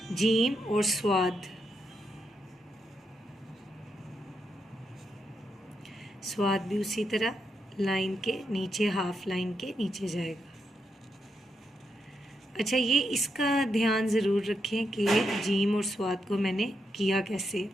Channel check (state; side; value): normal; both; correlation 0.82